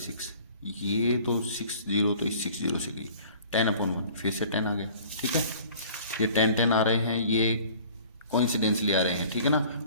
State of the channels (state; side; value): inverted; both; correlation -0.49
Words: ये तो 60 तो इस 60 से गई, 10/1 फिर से 10 आ गया, ठीक है। ये 10 10 आ रहे हैं, ये कोइंसिडेंसली आ रहे हैं, ठीक है ना।